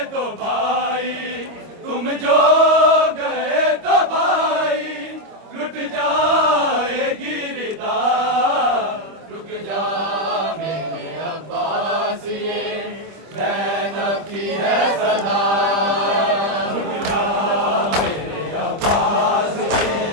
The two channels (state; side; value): late; left; 25 ms